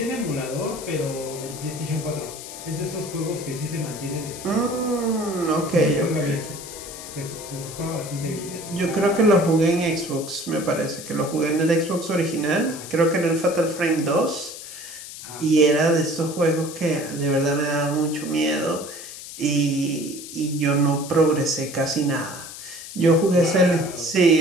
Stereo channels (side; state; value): left; noise; hiss, 12 dB below the sound